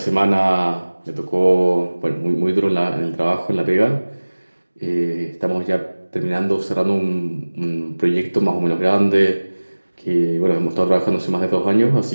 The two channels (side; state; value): both; inverted; correlation -1.00